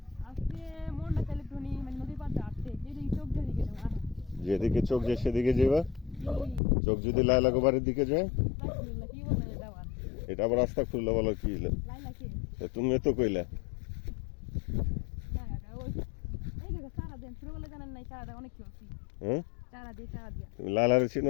যেদিকে চোখ যায় সেদিকে যাবা। চোখ যদি লাইলা গোবারের দিকে যায়, এটা আবার রাস্তা খুললো বলো কি হলো? তুমি তো কইলা হ্যাঁ, তুমি লাইলারে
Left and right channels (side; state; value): right; drops out; at 6.6 s